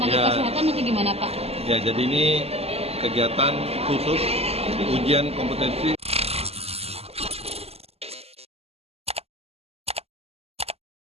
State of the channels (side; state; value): left; late; 0.29 ms